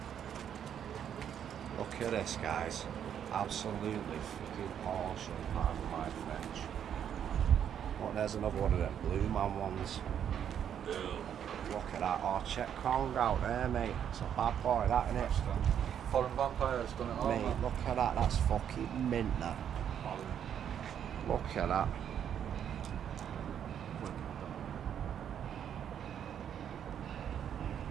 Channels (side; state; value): left; quieter; 9.0 dB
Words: Look at this, guys. Absolutely fucking awesome, pardon my French. Oh, there's another one of them Blue Man ones. Look at that. Oh, check Kong out there, mate. It's a bad boy, that, isn't it? Foreign Vampire's done it all, mate, man. look at that. That's fucking mint, that. Look at that.